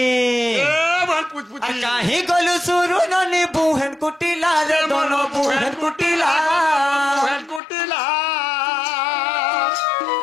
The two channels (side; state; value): right; drops out; at 7.6 s